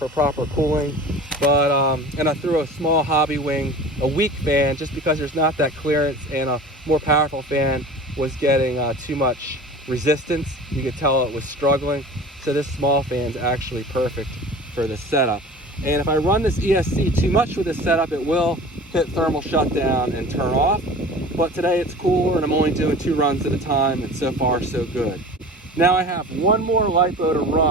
proper cooling, but and I threw a small hobby wing, a weak fan, just because there's not that clearance, and a more powerful fan was getting too much resistance. You could tell it was struggling, so this small fan's actually perfect for this setup. And if I run this ESC too much with this setup, it will hit thermal shutdown and turn off. But today it's cooler and I'm only doing 2 runs at a time, and so far so good. Now I have one more LiPo to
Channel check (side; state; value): both; normal; correlation 0.39